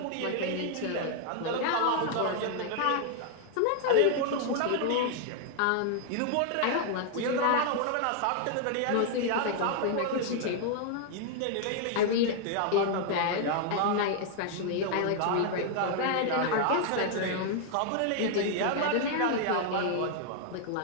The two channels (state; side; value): different; both; correlation 0.00